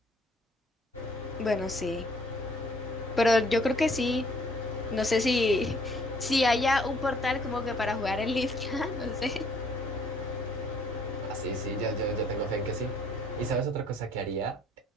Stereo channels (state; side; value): normal; both; correlation 0.62